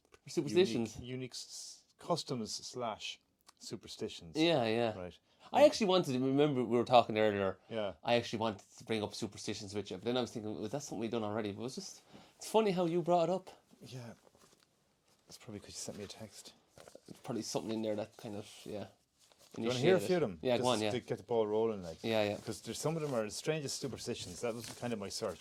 Superstitions. unique customs / superstitions. Yeah. Right. I actually wanted to, remember we were talking earlier. Yeah. I actually wanted to bring up superstitions with you, but then I was thinking, was that something we've done already? But it's funny how you brought it up. Yeah. That's probably because you sent me a text. There's probably something in there that kind of, yeah. Do you want to hear a few of them? Yeah, go on, yeah. To get the ball rolling, like. Yeah. Because there's some of them are the strangest superstitions. That was kind of my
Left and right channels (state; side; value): identical; both; correlation 1.00